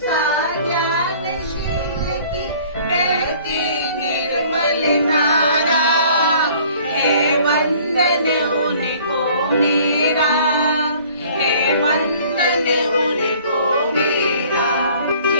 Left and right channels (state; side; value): inverted; both; correlation -0.53